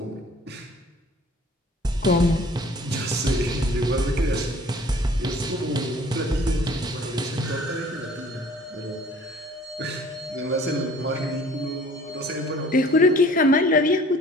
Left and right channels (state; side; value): normal; both; correlation 0.52